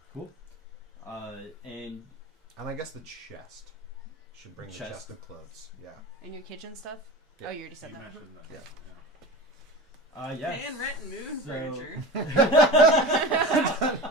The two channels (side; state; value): both; normal; correlation 0.31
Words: And And I guess the chest. Should bring the Chest. chest of clothes. Yeah. And your kitchen stuff? Yeah. Oh, you already said You that. mentioned that. Yeah. yeah. And rent and move So- furniture.